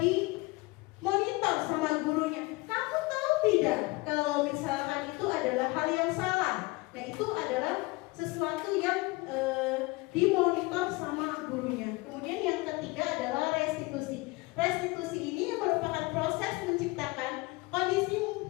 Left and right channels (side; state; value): right; quieter; 23.7 dB